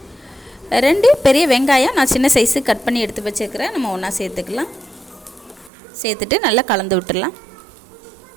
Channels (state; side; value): drops out; left; at 5.7 s